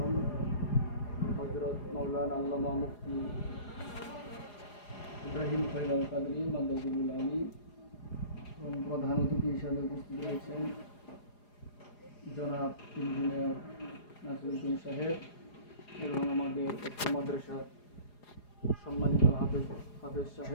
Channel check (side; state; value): right; late; 4.9 ms